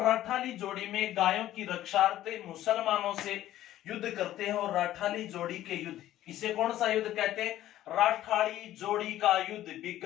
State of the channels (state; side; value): quieter; right; 13.5 dB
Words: राठाली जोड़ी में गायों की रक्षार्थ मुसलमानों से युद्ध करते हैं। और राठाली जोड़ी के युद्ध, इसे कौन सा युद्ध कहते हैं? राठाली जोड़ी का युद्ध